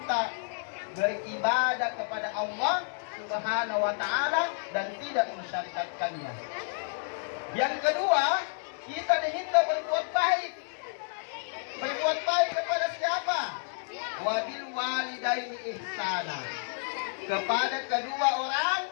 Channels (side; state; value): right; silent; digital silence